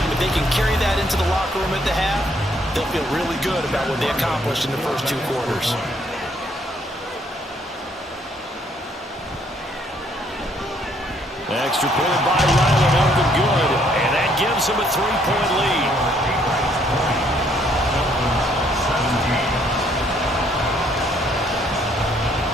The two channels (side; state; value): both; normal; correlation 0.67